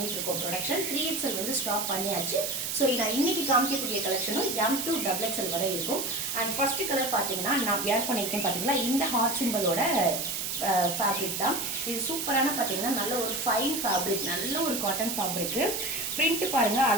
இருக்கோம் ப்ரொடக்ஷன். 3XL ஸ்டாப் பண்ணியாச்சு. சோ நான் இன்னைக்கு காமிக்கக்கூடிய கலெக்ஷனும் M to XXL வரை இருக்கும். and first கலர் பாத்தீங்கன்னா நான் வியர் பண்ணிருக்கேன் பாத்தீங்களா இந்த ஹார்ட் சிம்பலோட ஃபேப்ரிக் தான். இது சூப்பரான பாத்தீங்கன்னா நல்ல ஒரு ஃபைன் ஃபேப்ரிக், நல்ல ஒரு காட்டன் ஃபேப்ரிக். பிரிண்ட் பாருங்க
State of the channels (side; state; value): right; noise; hiss, 2 dB below the sound